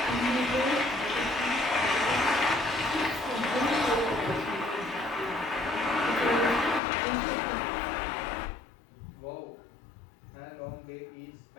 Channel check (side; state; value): right; drops out; at 6.8 s